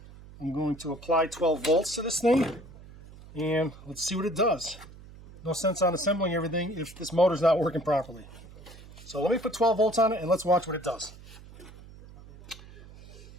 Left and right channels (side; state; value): right; noise; hum, 19 dB below the sound